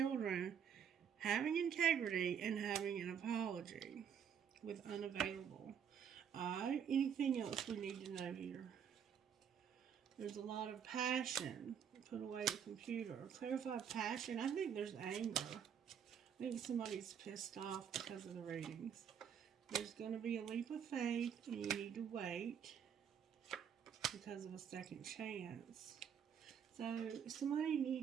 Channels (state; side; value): quieter; left; 8.0 dB